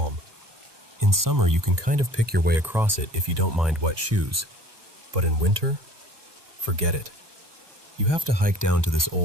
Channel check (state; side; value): late; left; 1.2 ms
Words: In summer, you can kind of pick your way across it if you don't mind wet shoes. But in winter, forget it. You have to hike down to this